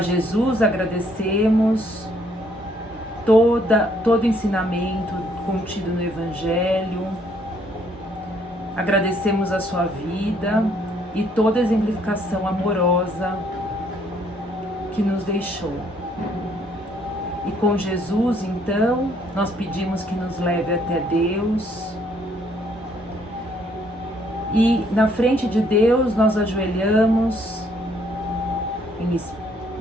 Jesus agradecemos todo ensinamento contido no Evangelho, agradecemos a sua vida e toda a exemplificação amorosa que nos deixou. E com Jesus, então, nós pedimos que nos leve até Deus. E na frente de Deus nós ajoelhamos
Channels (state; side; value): normal; both; correlation 0.66